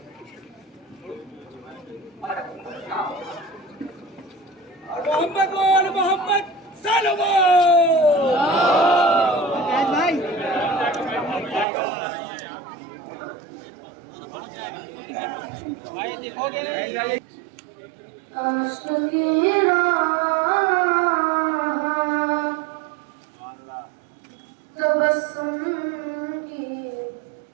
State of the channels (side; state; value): left; drops out; at 11.7 s